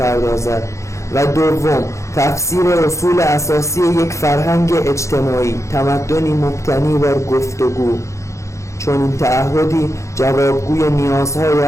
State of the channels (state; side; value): late; right; 0.14 ms